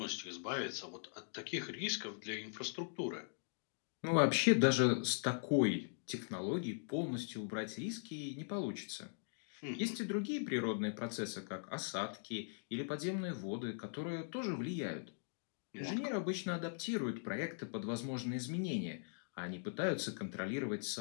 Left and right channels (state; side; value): silent; right; digital silence